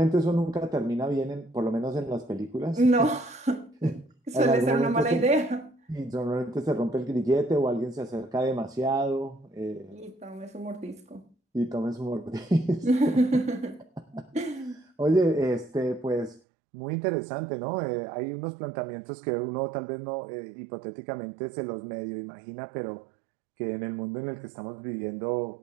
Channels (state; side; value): drops out; left; at 16.4 s